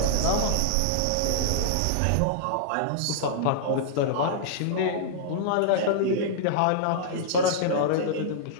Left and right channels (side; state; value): both; different; correlation -0.02